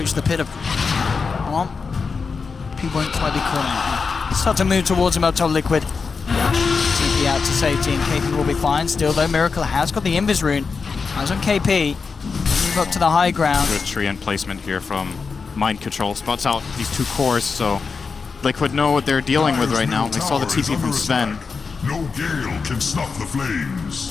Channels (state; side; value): quieter; right; 5.0 dB